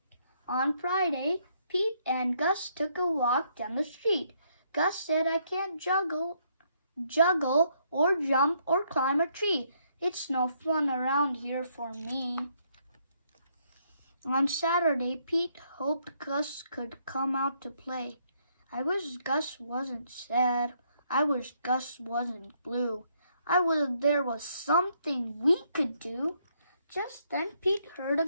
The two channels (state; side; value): inverted; both; correlation -0.72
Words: On Friday, Pete and Gus took a walk down the street. Gus said, "I can't juggle or jump or climb a tree. It's no fun around here for me." On Saturday, Pete hoped Gus could come out to play. "I wish Gus wasn't sad. I wish Gus wasn't blue. I wish there was something we could do." Just then Pete heard a